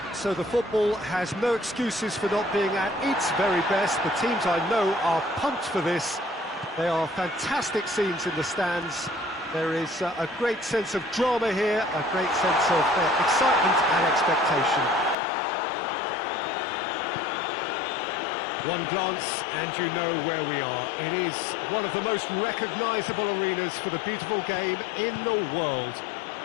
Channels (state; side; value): drops out; right; at 15.2 s